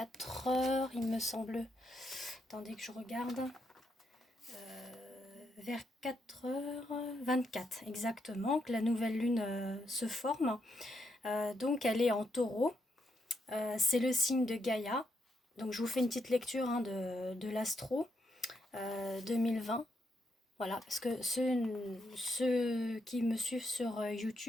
heures, il me semble. Attendez que je regarde. Vers 4h24 exactement, que la nouvelle lune se forme. Donc elle est en taureau. C'est le signe de Gaïa. Donc je vous fais une petite lecture de l'astro 2020. Voilà, parce que ceux qui me suivent sur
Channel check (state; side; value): normal; both; correlation 0.80